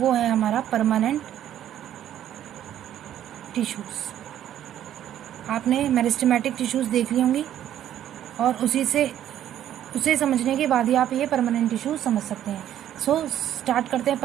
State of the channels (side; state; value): left; quieter; 11.2 dB